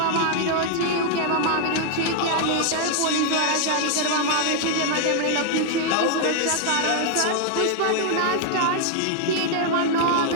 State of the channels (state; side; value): different; both; correlation 0.00